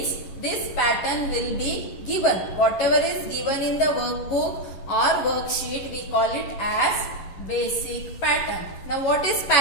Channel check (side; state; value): right; late; 11 ms